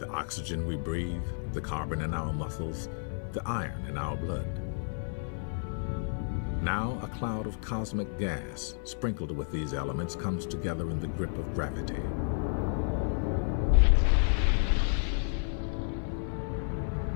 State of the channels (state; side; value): silent; right; 57 dB below the other